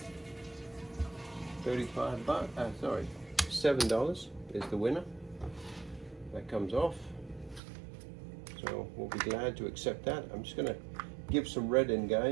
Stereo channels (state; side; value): drops out; left; at 7.6 s